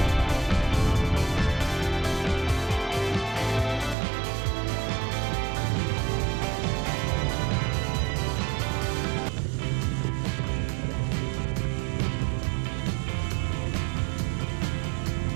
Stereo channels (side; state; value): left; drops out; at 4.0 s